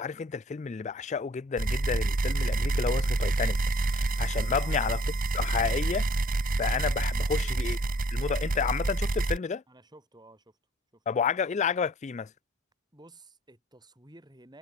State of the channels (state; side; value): normal; both; correlation 0.56